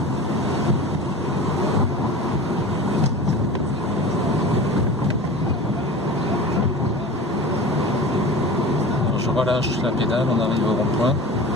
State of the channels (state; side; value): normal; both; correlation 0.35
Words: Alors, je relâche la pédale, on arrive au rond-point.